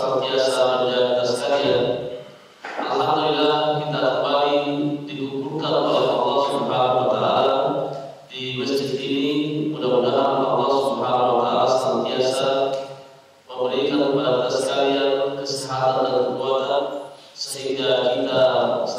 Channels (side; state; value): both; identical; correlation 1.00